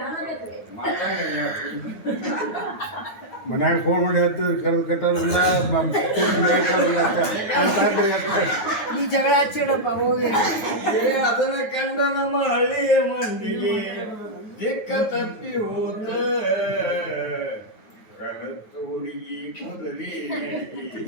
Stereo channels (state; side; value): late; right; 9.3 ms